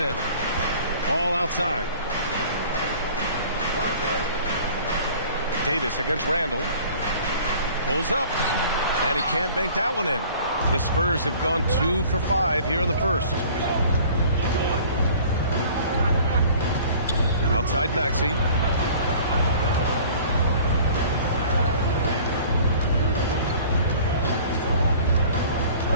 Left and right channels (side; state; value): both; inverted; correlation -0.48